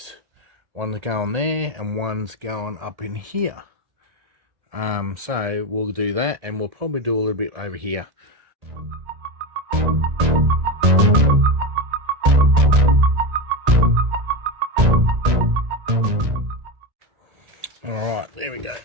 One's going there and one's going up in here. So we'll do that, and we'll probably do a little bit over here. Alright, there we go.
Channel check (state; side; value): late; left; 1.8 ms